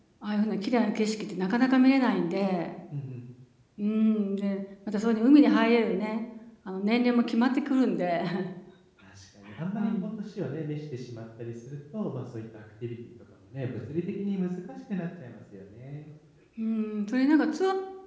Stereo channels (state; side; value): identical; both; correlation 1.00